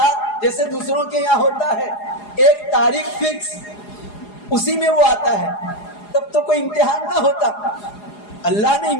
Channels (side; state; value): right; late; 4.8 ms